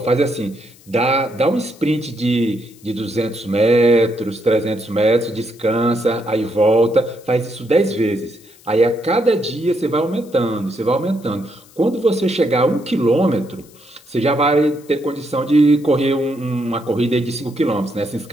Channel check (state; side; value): noise; left; hiss, 26 dB below the sound